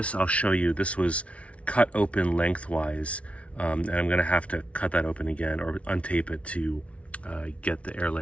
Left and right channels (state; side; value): late; right; 0.063 ms